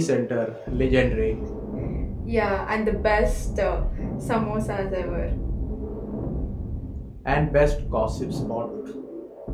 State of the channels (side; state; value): both; identical; correlation 1.00